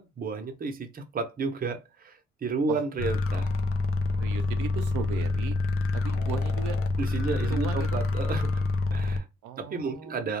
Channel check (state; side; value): normal; both; correlation 0.75